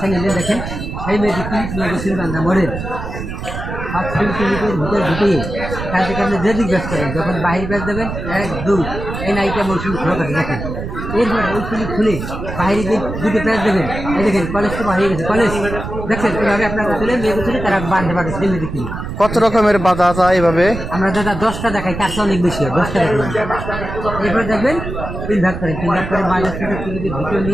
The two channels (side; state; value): right; noise; rumble, 7 dB below the sound